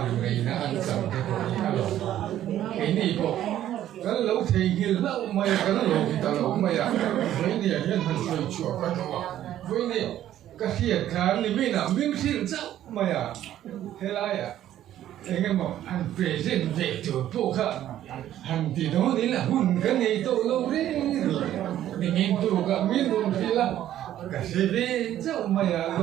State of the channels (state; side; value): quieter; left; 12.2 dB